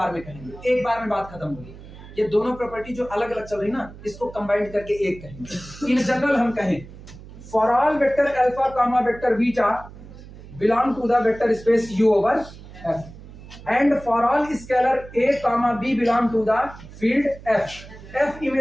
में कहेंगे, एक बार में बात खत्म होगी। ये दोनों प्रॉपर्टी जो अलग अलग चल रही ना, इसको कंबाइंड करके एक कहेंगे। इन जनरल हम कहें for all vector alpha comma vector beta belong to the vector space U over F, and for all scalar a comma b belong to the field F. F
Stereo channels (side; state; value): right; noise; hum, 17 dB below the sound